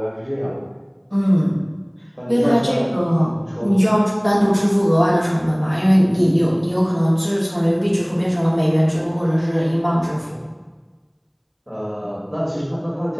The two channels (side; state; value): both; identical; correlation 1.00